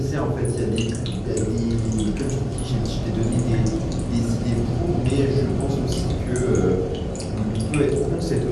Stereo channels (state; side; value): identical; both; correlation 1.00